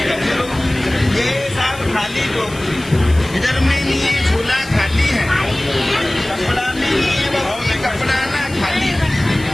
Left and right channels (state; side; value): noise; left; hiss, 18 dB below the sound